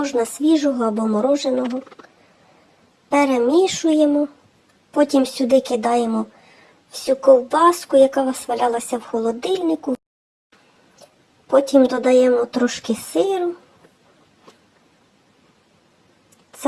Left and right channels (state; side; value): identical; both; correlation 1.00